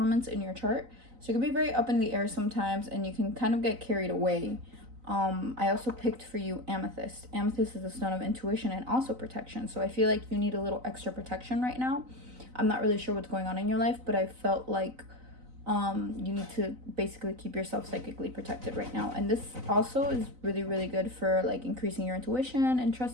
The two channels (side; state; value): left; late; 3.9 ms